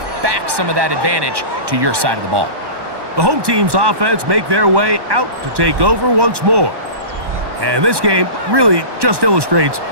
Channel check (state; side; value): late; left; 1.1 ms